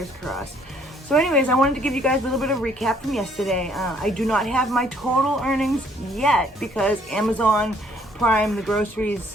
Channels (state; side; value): normal; both; correlation 0.63